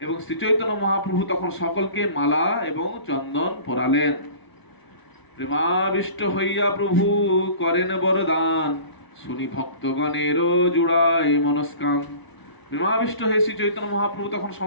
এবং শ্রী চৈতন্য মহাপ্রভু তখন সকলকে মালা এবং চন্দন পরালেন। প্রেমাবিষ্ট হইয়া প্রভু করেন বরদান, শুনি ভক্তগণের জুড়ায় মনস্কান। প্রেমাবিষ্ট হয়ে শ্রী চৈতন্য মহাপ্রভু তখন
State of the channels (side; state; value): right; late; 1.0 ms